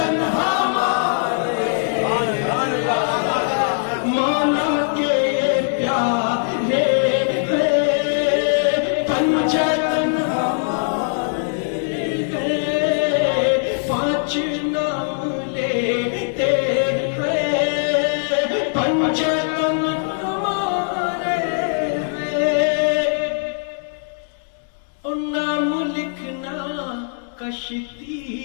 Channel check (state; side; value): silent; right; digital silence